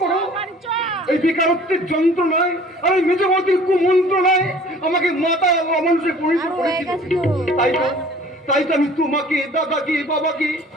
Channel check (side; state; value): both; normal; correlation 0.50